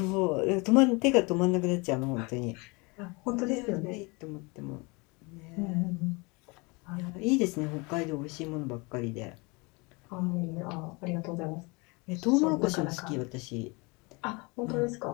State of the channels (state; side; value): quieter; right; 27.8 dB